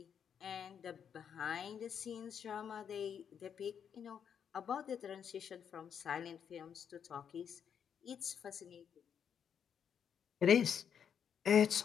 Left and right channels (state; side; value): quieter; right; 7.9 dB